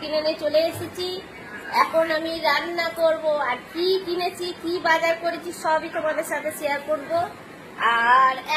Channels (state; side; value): identical; both; correlation 1.00